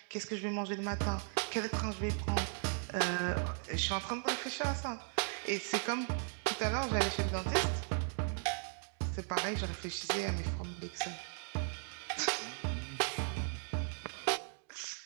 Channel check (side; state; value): left; silent; 53 dB below the other